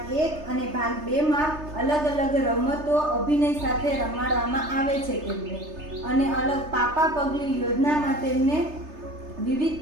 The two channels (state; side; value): late; left; 3.3 ms